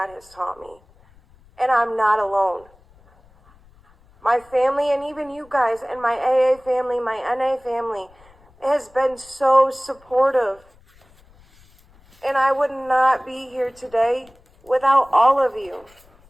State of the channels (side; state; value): left; noise; rumble, 29 dB below the sound